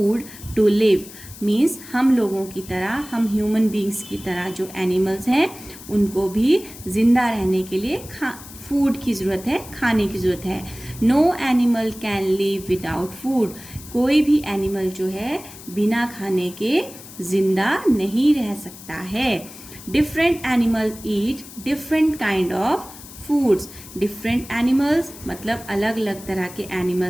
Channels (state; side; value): noise; left; hiss, 17 dB below the sound